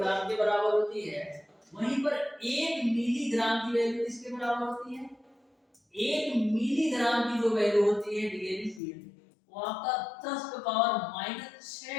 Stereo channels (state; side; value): drops out; right; at 8.8 s